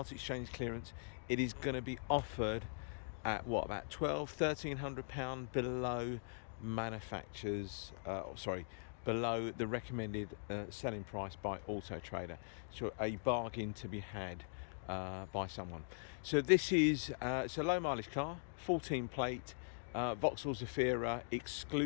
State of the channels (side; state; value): right; silent; digital silence